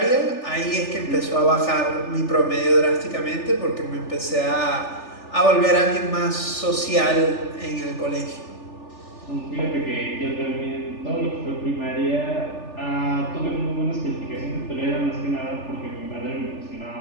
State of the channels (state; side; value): late; right; 3.4 ms